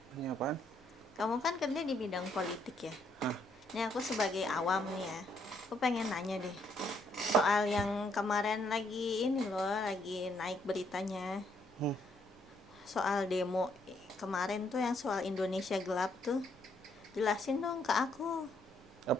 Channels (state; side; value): normal; both; correlation 0.72